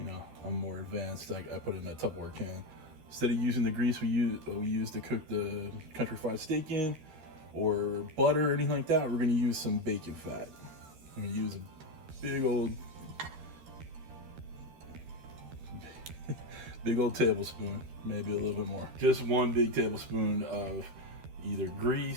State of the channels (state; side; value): late; left; 13 ms